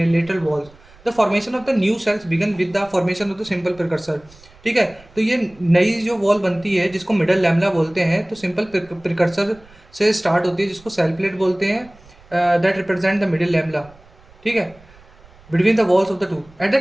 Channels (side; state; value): right; noise; rumble, 26 dB below the sound